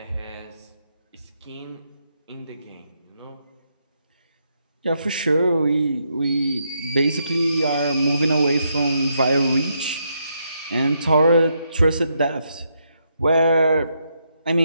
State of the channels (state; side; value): inverted; both; correlation -0.79